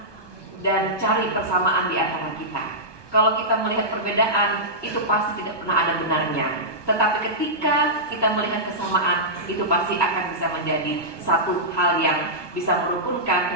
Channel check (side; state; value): right; late; 1.2 ms